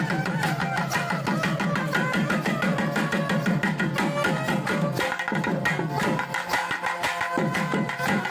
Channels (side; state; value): both; identical; correlation 1.00